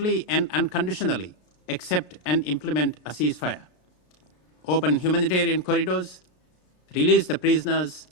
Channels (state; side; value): late; right; 36 ms